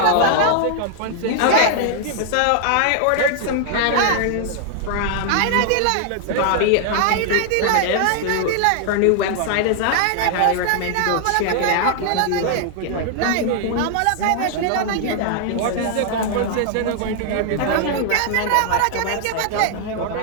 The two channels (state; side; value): different; both; correlation 0.00